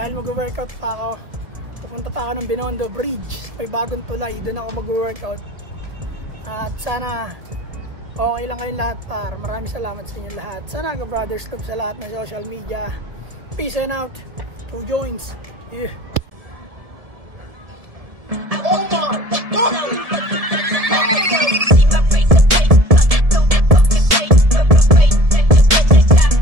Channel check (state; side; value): late; left; 1.7 ms